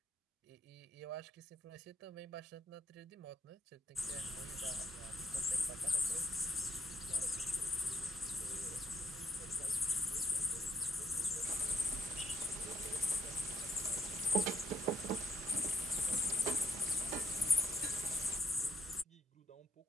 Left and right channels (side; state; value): both; normal; correlation 0.71